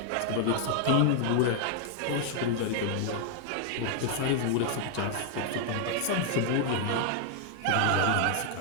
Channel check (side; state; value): both; different; correlation 0.00